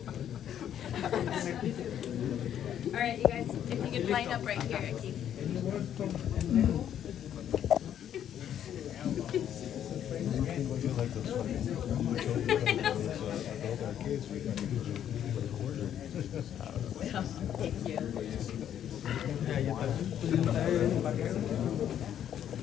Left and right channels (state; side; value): quieter; right; 10.0 dB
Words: All right, you guys, if you could line up right here, Keith. Thank you.